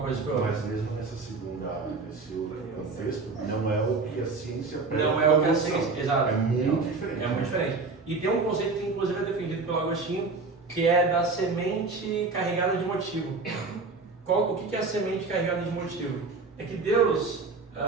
coisa que foi outra. Mas mesmo nesse outro contexto, não é o que a ciência não é o que a ciência, exato. É muito diferente. É muito diferente. E tem um conceito que inclusive é defendido pelo Agostinho, que é da semente carregada de motivo. o que é a semente carregada de motivo? É que Deus,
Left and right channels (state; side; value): quieter; left; 4.0 dB